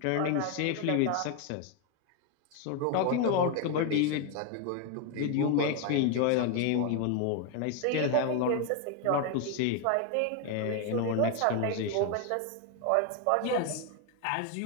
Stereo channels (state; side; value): different; both; correlation 0.01